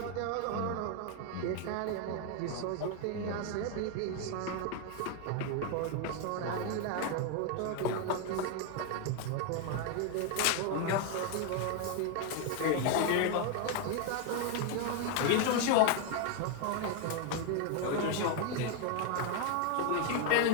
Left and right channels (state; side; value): different; both; correlation 0.01